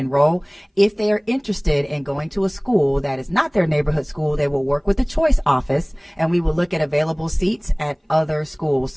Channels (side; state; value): both; identical; correlation 1.00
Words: If they are interested in going to a school that is not their neighborhood school, they will work with the choice office, and we will look at available seats at other schools.